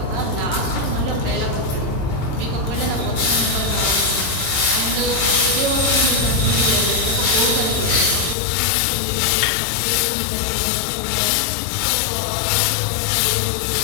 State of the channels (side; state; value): right; drops out; at 8.3 s